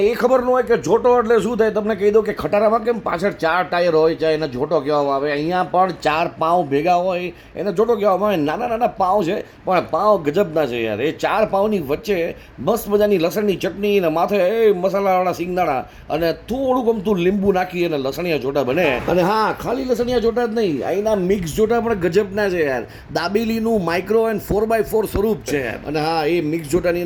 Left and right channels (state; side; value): identical; both; correlation 1.00